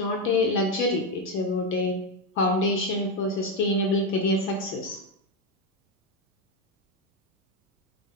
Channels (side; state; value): both; normal; correlation 0.08